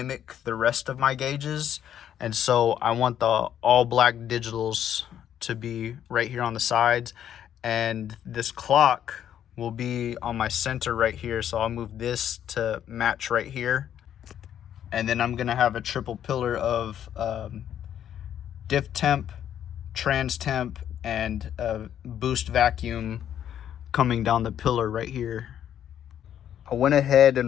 the rest of my gauges. And so I want the all black digitals to be right here on the sides, and this clock will be on my center right here. So I'll move this to match right here. And then I'm gonna have a triple pillar of diff temp, trans temp, and boost vacuum coming down the pillar right here. I went ahead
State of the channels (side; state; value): right; quieter; 10.1 dB